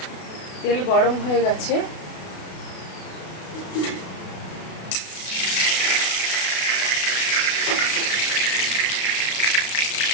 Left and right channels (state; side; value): late; right; 32 ms